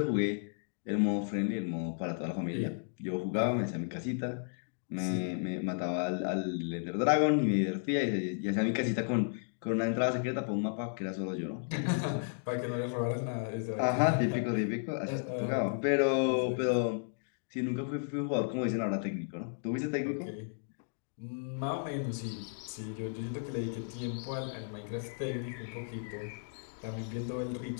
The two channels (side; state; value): right; silent; digital silence